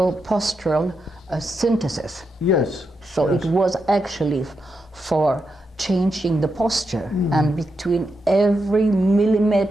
synthesis. Yes. So yes. it was actually for changing the posture, and between every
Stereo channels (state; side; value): normal; both; correlation 0.85